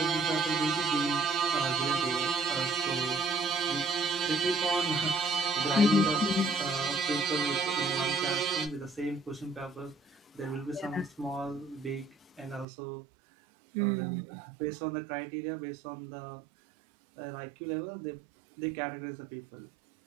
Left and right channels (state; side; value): drops out; left; at 12.7 s